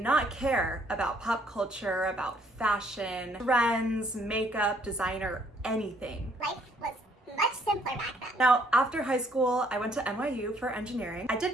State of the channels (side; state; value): both; normal; correlation 0.66